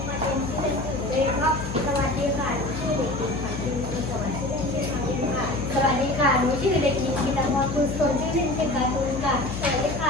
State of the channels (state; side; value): noise; left; hum, 7 dB below the sound